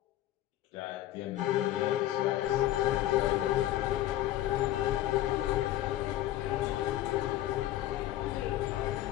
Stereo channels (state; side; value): quieter; right; 14.1 dB